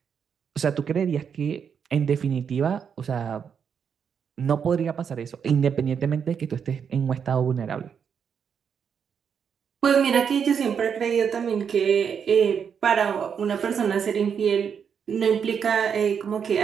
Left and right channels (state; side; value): quieter; left; 7.2 dB